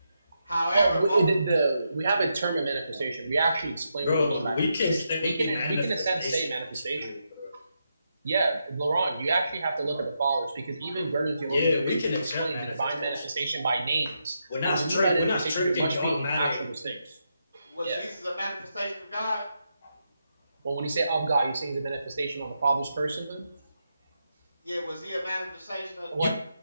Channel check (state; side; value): inverted; both; correlation -0.83